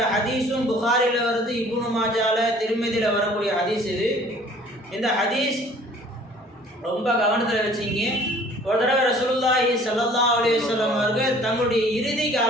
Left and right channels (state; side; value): normal; both; correlation 0.53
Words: ஹதீஸும் புகாரில் வருது, இப்னு மாஜால, திருமதியில் வரக்கூடிய ஹதீஸ் இது. இந்த ஹதீஸ் ரொம்ப கவனத்தில் வச்சிங்க. ஒரு தடவை ரசூலுல்லாஹி ஸல்லல்லாஹு அலைஹி வஸல்லம் அவர்கள் தங்களுடைய இறுதி